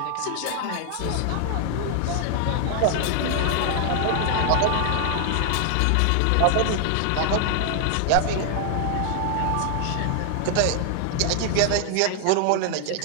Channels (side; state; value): both; different; correlation 0.00